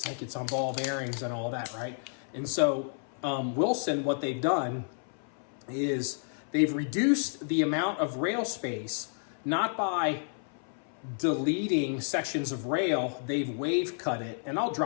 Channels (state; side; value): silent; right; 57 dB below the other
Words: like it's on ball bearings and all that, right? And so Wilson, what they've done is they've reduced the amount of rail space, not by deleting sections of rail, they've wave cut it, and I'll